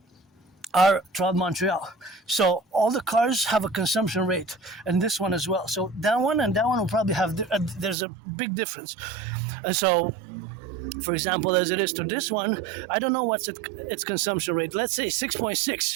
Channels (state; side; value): drops out; left; at 8.0 s